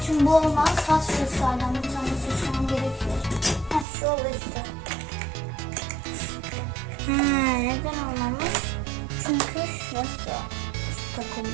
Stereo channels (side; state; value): left; drops out; at 3.9 s